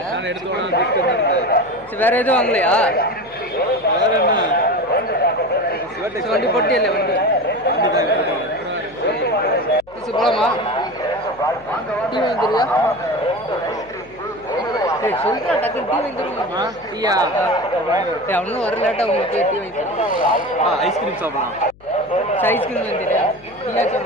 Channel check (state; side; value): noise; left; hum, 26 dB below the sound